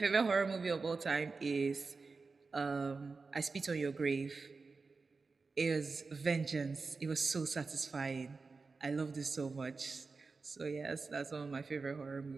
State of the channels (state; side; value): quieter; left; 4.3 dB